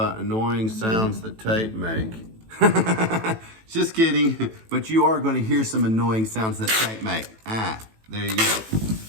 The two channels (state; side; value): late; left; 18 ms